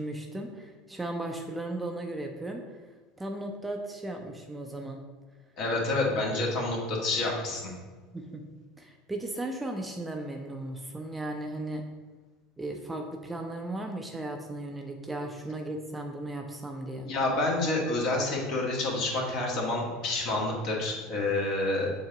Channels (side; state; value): both; normal; correlation 0.45